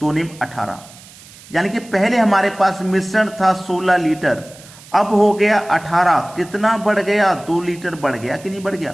निम 18, यानी कि पहले हमारे पास मिश्रण था 16 लीटर, अब हो गया 18। कितना बढ़ गया, 2 लीटर बढ़ गया कि नहीं बढ़ गया।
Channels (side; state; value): right; noise; hiss, 21 dB below the sound